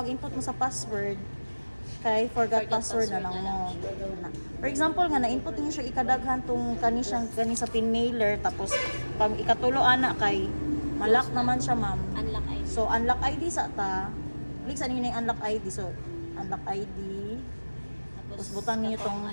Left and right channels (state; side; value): inverted; both; correlation -1.00